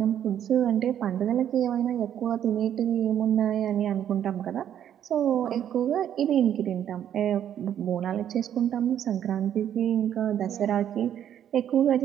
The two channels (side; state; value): left; quieter; 10.0 dB